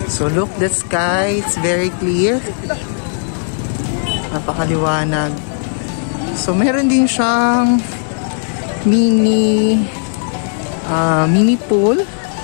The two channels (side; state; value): right; silent; 69 dB below the other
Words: So look, the sky, it's very clear. Napakaliwanag. So meron din siyang mini pool